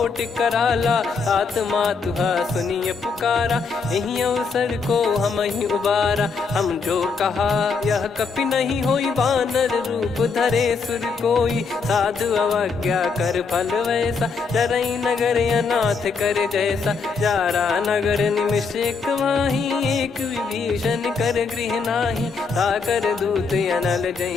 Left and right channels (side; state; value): right; quieter; 5.0 dB